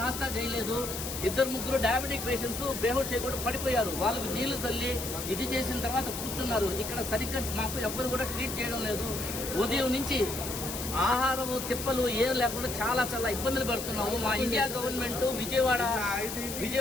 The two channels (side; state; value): left; noise; hiss, 6 dB below the sound